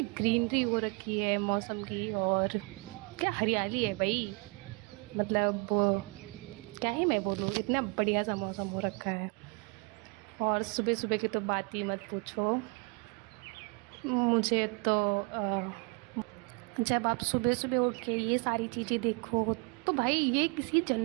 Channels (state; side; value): quieter; left; 31.8 dB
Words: ग्रीनरी हो रखी है मौसम की, और क्या हरियाली है भाई। मतलब क्या ही मैं बोलूँ, इतना बढ़िया सा मौसम हो रखा है। और सुबह सुबह की तो बात ही मत पूछो। मुझे तो जब आप सुबह सुबह उठ के ये सारी चीज़ें देखो, तो भाई ये किसी